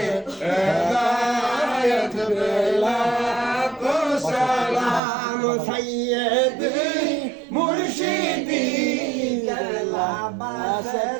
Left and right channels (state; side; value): drops out; left; at 5.0 s